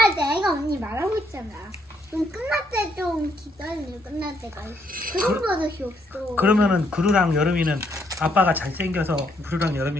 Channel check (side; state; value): both; normal; correlation 0.73